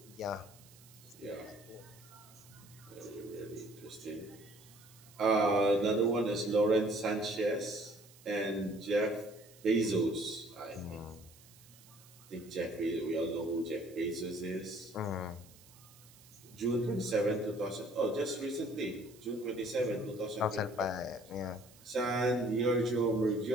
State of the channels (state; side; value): noise; right; hiss, 23 dB below the sound